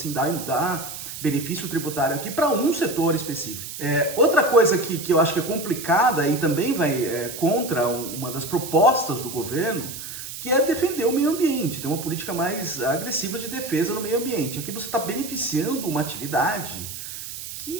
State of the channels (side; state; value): right; noise; hiss, 9 dB below the sound